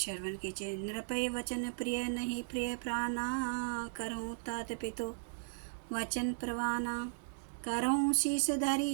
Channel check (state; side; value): silent; left; digital silence